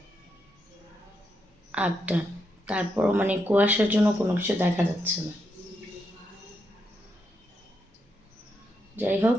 8টা, তারপরও মানে কুয়াশার জন্য কোনো কিছু দেখা যাচ্ছে না। যাই হোক,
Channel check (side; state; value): both; normal; correlation 0.82